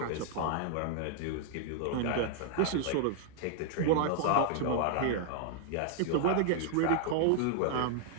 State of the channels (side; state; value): both; different; correlation -0.01